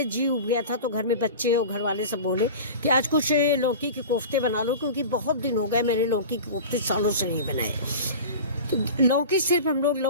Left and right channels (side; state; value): both; inverted; correlation -0.33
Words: जी उब गया था तो घर में बच्चे और घर वाले सब बोले कि आज कुछ लौकी के कोफ्ते बना लो, क्योंकि बहुत दिन हो गए मैंने लौकी के कोफ्ते सालों से नहीं बनाए। तो लौकी सिर्फ हम लोग